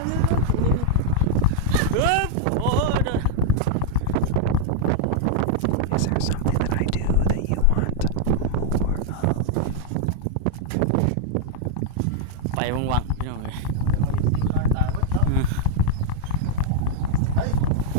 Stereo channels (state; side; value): different; both; correlation 0.00